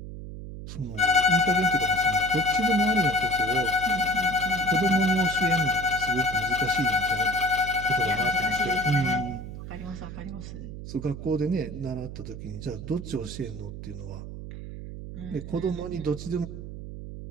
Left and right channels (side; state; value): right; noise; hum, 10 dB below the sound